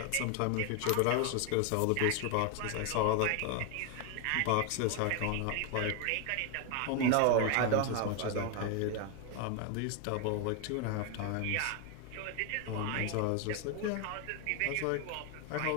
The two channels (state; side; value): different; both; correlation 0.01